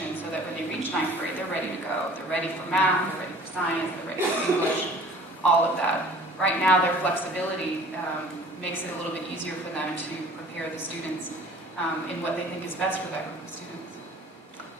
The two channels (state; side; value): normal; both; correlation 0.48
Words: so that when they reach 9th grade, they're ready to go. They're ready for math, they're ready for science, they're ready for English, all of that. Right now, their flexibility makes it a little bit easier for them to prepare the students in what they think is best for that group of students.